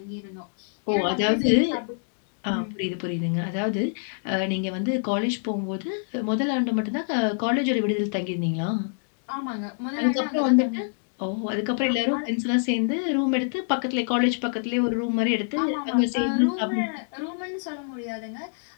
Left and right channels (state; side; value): silent; right; digital silence